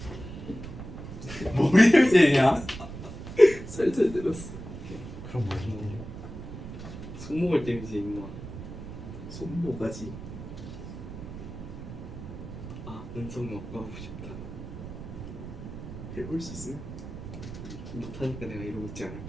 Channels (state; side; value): noise; right; rumble, 10 dB below the sound